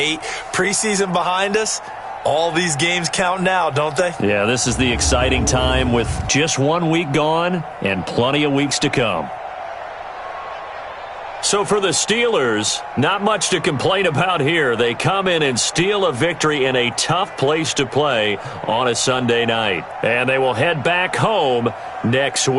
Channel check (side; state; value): both; identical; correlation 1.00